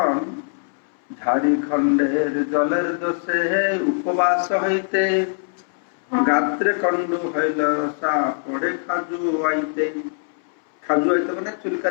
ঝাড়িখণ্ডের জলের দোষে উপবাস হইতে, গাত্রে কণ্ডু হইল রসা পড়ে খাজু আইতে। খাজু আইতে মানে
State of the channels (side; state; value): right; silent; 64 dB below the other